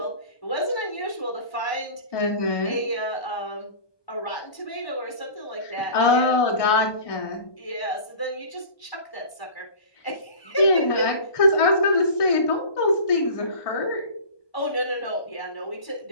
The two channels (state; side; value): late; right; 1.2 ms